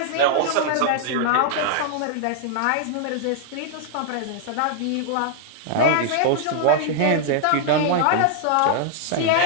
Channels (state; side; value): different; both; correlation -0.01